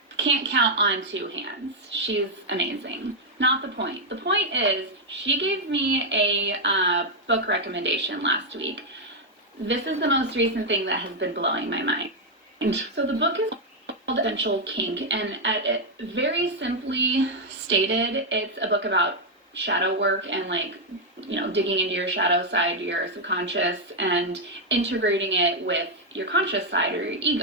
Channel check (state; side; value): normal; both; correlation -0.01